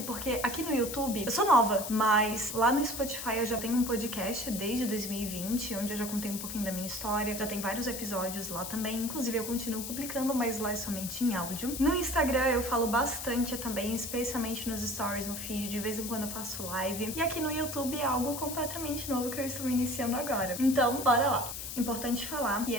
porque aqui no YouTube eu sou nova, mas lá no Spotify eu já tenho um podcast desde 2020, onde eu já contei um pouquinho da minha história, já tem vários episódios lá também, inclusive eu continuo publicando, mas lá é somente em áudio. No Instagram eu falo bastante também, especialmente nos stories, no feed, de vez em quando eu faço live. E aqui no YouTube é algo completamente novo que eu estou iniciando agora. Então, bora lá! Importante falar que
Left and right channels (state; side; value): noise; left; hiss, 7 dB below the sound